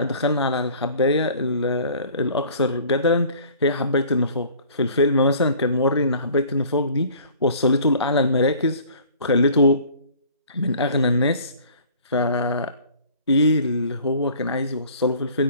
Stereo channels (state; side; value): inverted; both; correlation -0.50